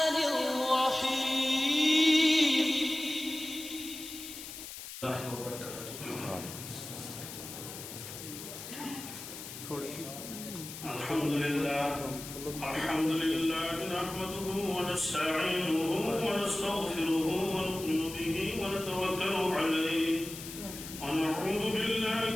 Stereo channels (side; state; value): left; noise; hiss, 11 dB below the sound